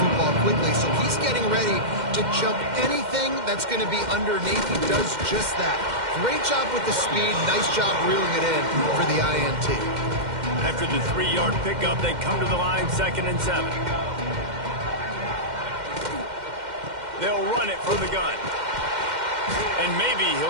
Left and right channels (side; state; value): left; late; 2.1 ms